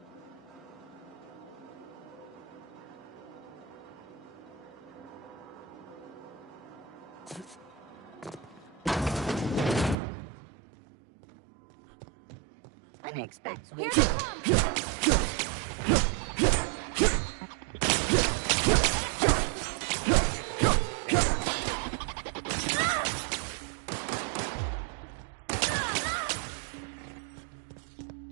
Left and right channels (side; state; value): left; drops out; at 10.0 s